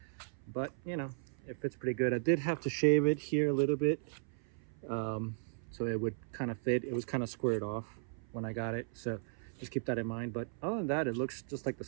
But you know, it fits pretty good. I did have to shave it here a little bit so it would kind of fit. It was kind of squared off when I got it, so just keep that in mind. But other than that, it looks just like the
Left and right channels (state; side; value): silent; left; 54 dB below the other